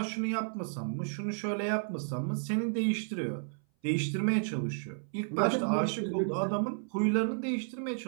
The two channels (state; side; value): silent; left; 56 dB below the other